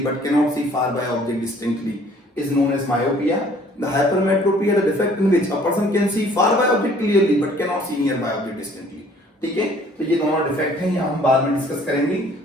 but cannot see far by object distinctly is known as myopia. The hypermetropia, the defect in which a person can see far by object clearly but cannot see nearby object distinctly, ठीक है? तो ये दोनों defect हैं, ये हम बाद में डिस्कस करेंगे।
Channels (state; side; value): normal; both; correlation 0.56